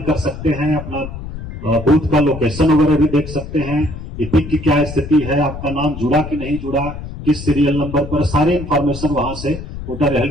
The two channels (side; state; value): left; noise; rumble, 10 dB below the sound